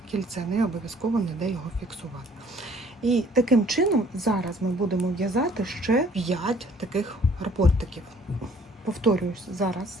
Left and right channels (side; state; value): both; normal; correlation 0.58